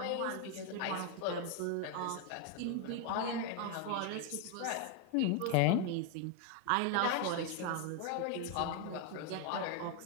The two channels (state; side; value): different; both; correlation 0.01